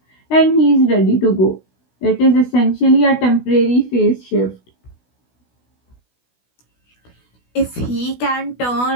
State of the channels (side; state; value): right; late; 16 ms